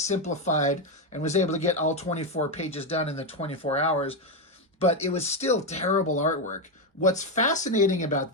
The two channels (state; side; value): normal; both; correlation 0.08